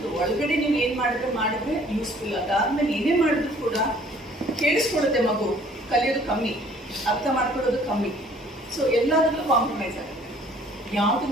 ಒಳಗಡೆ ನೀವು ಏನು ಮಾಡಿದ್ರೆ ಯೂಸ್ಫುಲ್. ಅದಾದ್ಮೇಲೆ ಏನೇ ಮಾಡಿದ್ರು ಕೂಡ ಕೇಳಿಸ್ಕೊಡುತ್ತೆ ಮಗು, ಕಲಿಯೋದು ಕಮ್ಮಿ, ಅರ್ಥ ಮಾಡ್ಕೊಳ್ಳೋದು ಕಮ್ಮಿ. ಸೊ ಎಲ್ಲದರಲ್ಲೂ ಕಾಂಪ್ರಮೈಸ್ ಆಗುತ್ತೆ. ಯಾವ್ದು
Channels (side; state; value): both; normal; correlation 0.56